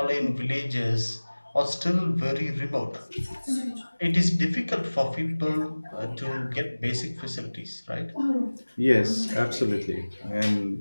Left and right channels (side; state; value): both; inverted; correlation -1.00